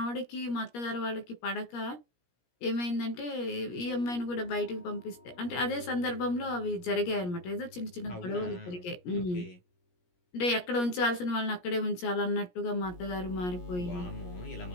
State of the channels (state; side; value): late; right; 17 ms